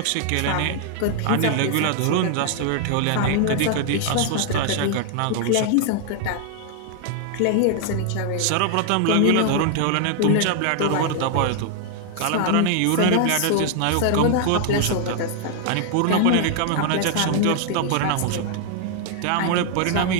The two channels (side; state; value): both; different; correlation 0.00